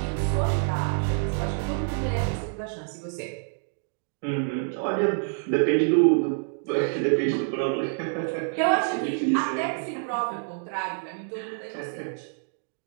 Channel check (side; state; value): left; silent; digital silence